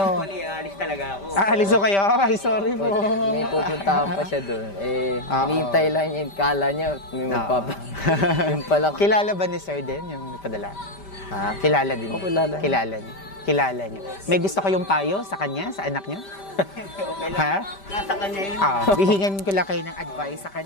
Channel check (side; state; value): right; late; 5.1 ms